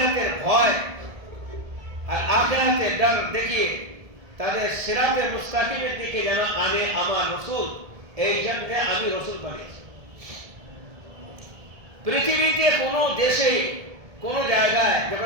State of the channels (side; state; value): left; late; 1.7 ms